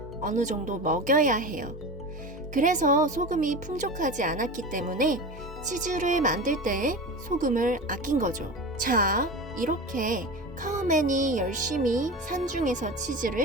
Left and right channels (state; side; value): normal; both; correlation 0.28